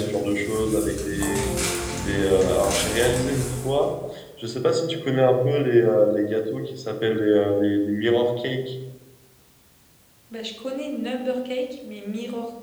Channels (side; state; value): both; identical; correlation 1.00